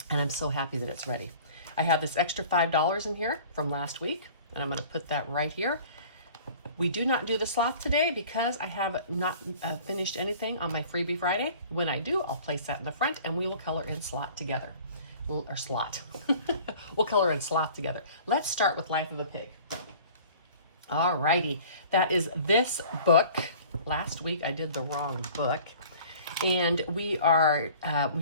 and I'm so happy that it's ready. I have this extra $5 in here from last week, and I'm going to put that right here. We do not do the sloth today because I have not finished anything on my freebie Friday. When I do, I'll place that in the front, and we will color in slot together. Or slot. We'll color in sloth together. Let's start with Life of a Pig. All righty. That is this book. Last week I did the wrong book. And we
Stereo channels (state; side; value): inverted; both; correlation -0.47